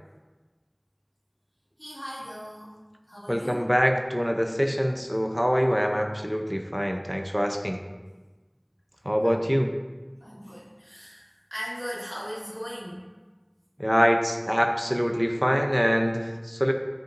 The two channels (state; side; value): identical; both; correlation 1.00